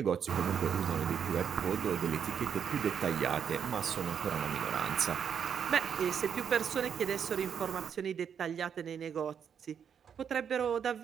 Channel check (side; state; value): left; quieter; 7.7 dB